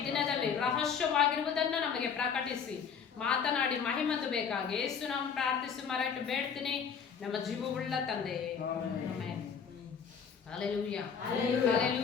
ದಿನದಲ್ಲಿ ರಹಸ್ಯವಾಗಿರುವುದನ್ನು ನಮಗೆ ಪ್ರಕಟಿಸಿ ಮಾತನಾಡಿ ಮಹಿಮಂದು ಬೇಕಾಗಿ ಯೇಸು ನಾವು ಪ್ರಾರ್ಥಿಸಿ ಮರೆಟ್ಟು ಬೇಡ್ತೀನಿ ನಮ್ಮ ಜೀವವುಳ್ಳ ತಂದೆ. Amen. Hallelujah.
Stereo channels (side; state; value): right; quieter; 6.7 dB